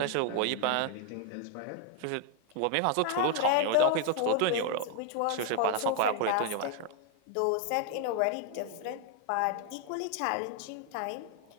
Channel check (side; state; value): both; different; correlation 0.00